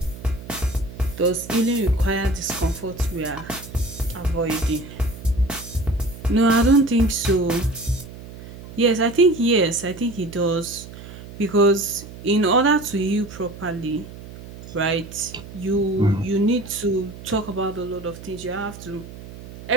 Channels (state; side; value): noise; right; hum, 15 dB below the sound